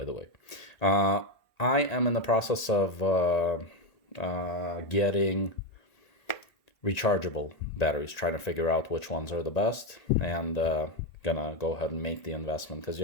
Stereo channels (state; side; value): late; right; 1.8 ms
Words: the way. I am in the process of getting rechargeable batteries, trying to figure out which ones are the best, and gonna go ahead and make the investment because you